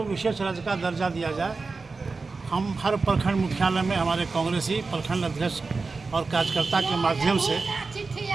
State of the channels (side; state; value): left; quieter; 4.1 dB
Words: विशेष राज्य का दर्जा दिया जाए। हम हर प्रखंड मुख्यालय में हमारे कांग्रेसी प्रखंड अध्यक्ष और कार्यकर्ता के माध्यम से